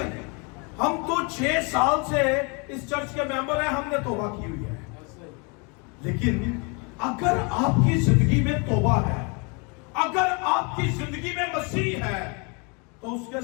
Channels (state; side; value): quieter; right; 32.5 dB